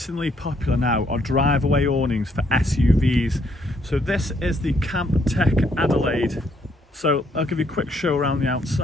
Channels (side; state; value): both; normal; correlation 0.70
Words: popular now are drive-away awnings for SUVs. So this is the Camptech Adelaide. So I'll give you a quick show around the